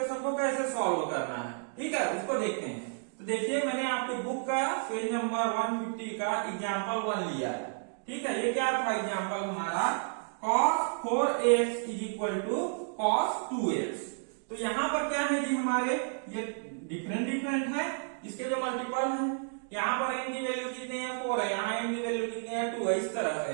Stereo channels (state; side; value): silent; left; digital silence